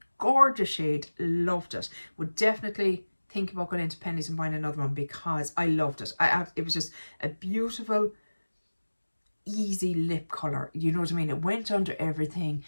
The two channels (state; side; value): inverted; both; correlation -1.00